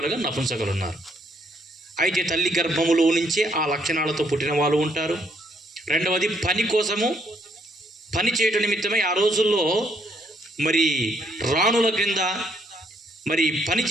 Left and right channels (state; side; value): normal; both; correlation 0.71